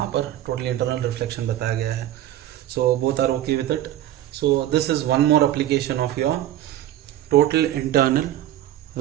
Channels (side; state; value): left; quieter; 12.8 dB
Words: पर टोटली इंटरनल रिफ्लेक्शन बताया गया है। So both are okay with it. So this is one more application of your total internal